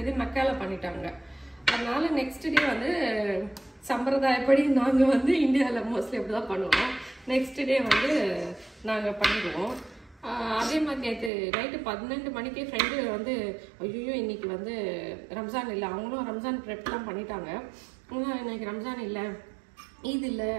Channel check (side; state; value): left; drops out; at 11.3 s